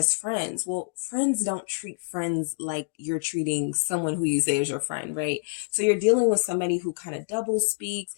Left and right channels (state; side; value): silent; right; digital silence